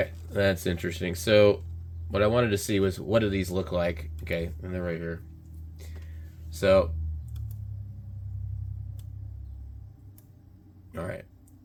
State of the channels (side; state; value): both; identical; correlation 1.00